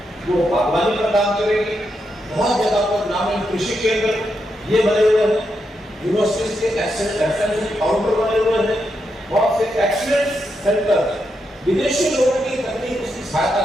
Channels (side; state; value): both; normal; correlation 0.83